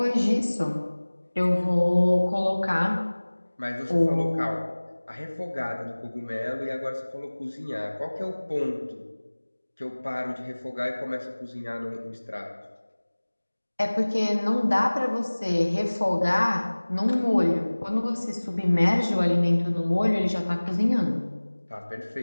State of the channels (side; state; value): both; inverted; correlation -1.00